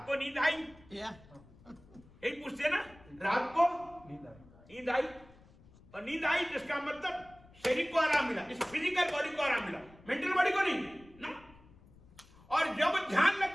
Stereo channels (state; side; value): noise; left; rumble, 24 dB below the sound